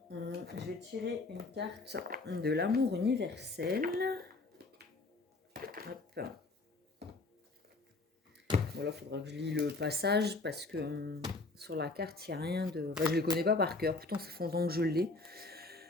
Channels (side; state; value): right; quieter; 3.4 dB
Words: vais tirer une carte de l'amour universel. Hop. Voilà, il faudra que je lis le passage parce que sur la carte, il n'y a rien de... Enfin, je ne le connais pas par cœur. Pourtant, ça fait longtemps que je l'ai.